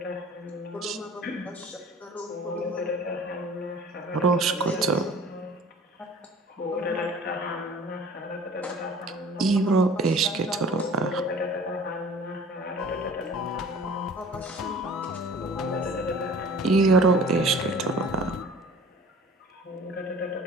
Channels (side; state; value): both; normal; correlation 0.46